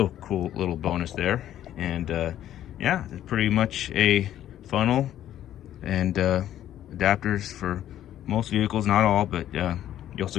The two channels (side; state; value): right; quieter; 11.8 dB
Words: a cool little bonus there. And yeah, it's pretty much a funnel and adapters for most vehicles, not all, but you also